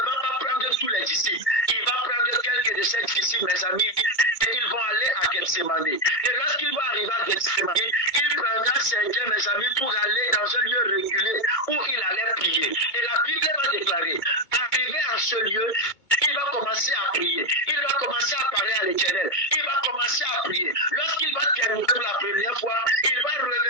va pas prendre tous les disciples. Il va prendre quelques de ses disciples, mes amis, ils vont aller à Gethsemane. Et lorsqu'ils vont arriver à Gethsemane, il prendra certains, mes amis, pour aller dans un lieu reculé où il allait prier. Et la Bible va déclarer, arrivé à ce lieu, il va commencer à prier. Il va commencer à parler à l'Éternel. Il va commencer à prier. Lorsqu'il va terminer pour la première fois, il va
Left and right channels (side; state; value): right; late; 2.2 ms